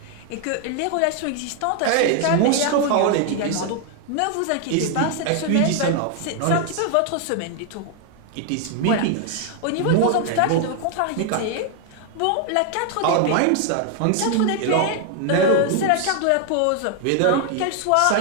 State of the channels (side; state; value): both; different; correlation 0.00